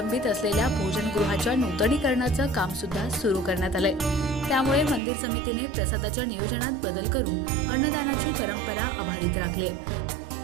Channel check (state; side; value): drops out; left; at 5.0 s